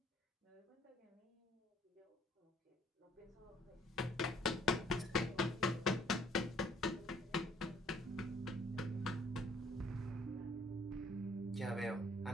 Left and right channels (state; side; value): normal; both; correlation 0.61